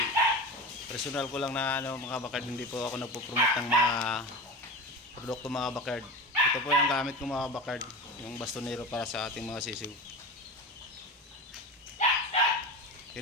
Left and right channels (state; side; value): normal; both; correlation 0.27